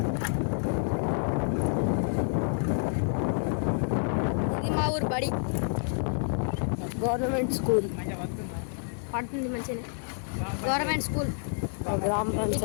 ఇది మా ఊరు బడి, గవర్నమెంట్ స్కూల్. పడుతుంది మంచిగా, గవర్నమెంట్ స్కూల్.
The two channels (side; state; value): right; silent; 59 dB below the other